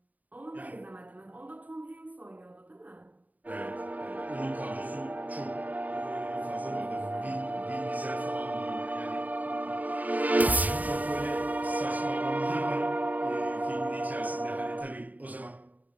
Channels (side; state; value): left; late; 0.076 ms